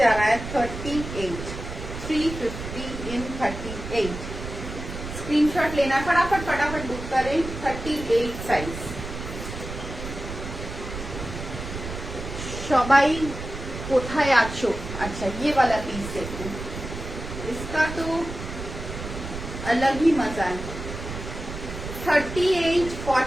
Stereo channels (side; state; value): right; noise; rumble, 8 dB below the sound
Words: रहा है 38. 350 in 38. Screenshot लेना, फटाफट book करें. 38 size. सबाई कोठाय आछो. अच्छा ये वाला पीस देखो, इसका तो अलग ही मजा है. 38